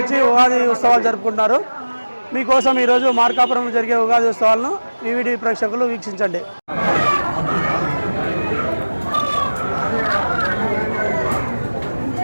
వచ్చి ఉగాది ఉత్సవాలు జరుపుకుంటున్నారు. మీకోసం ఈరోజు మార్కాపురం జరిగే ఉగాది ఉత్సవాలను ఈవీడి ప్రేక్షకులు వీక్షించండి.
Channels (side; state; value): both; inverted; correlation -1.00